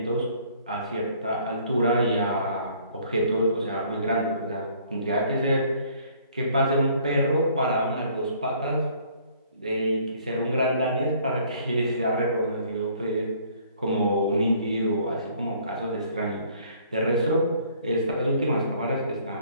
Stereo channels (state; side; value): inverted; both; correlation -0.59